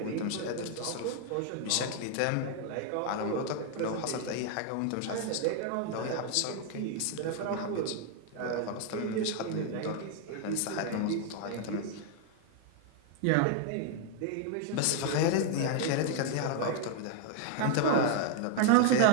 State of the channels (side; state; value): both; different; correlation 0.00